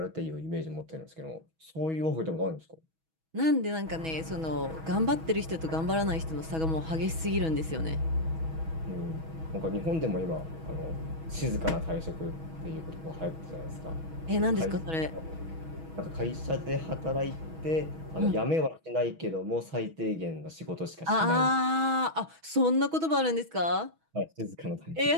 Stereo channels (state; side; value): late; left; 6.2 ms